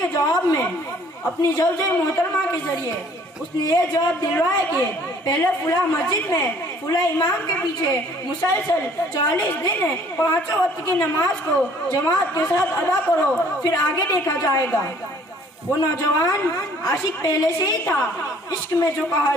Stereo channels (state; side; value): normal; both; correlation 0.57